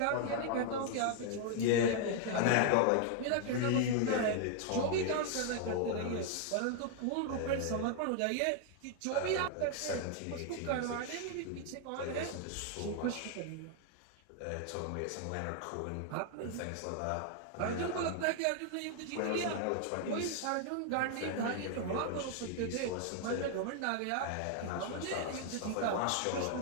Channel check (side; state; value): both; different; correlation 0.00